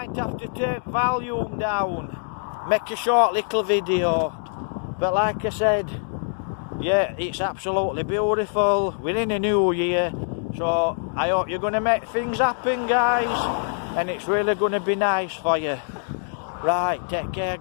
have to take volume down, make a short little video. But like I said, yeah, it's absolutely beautiful. We're in a new year, so I hope you're going to make things happen, guys, and it's really going to be nice for you. Right, take care,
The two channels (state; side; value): silent; right; digital silence